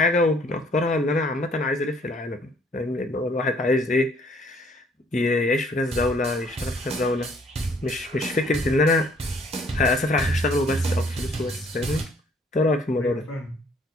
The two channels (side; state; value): both; normal; correlation 0.61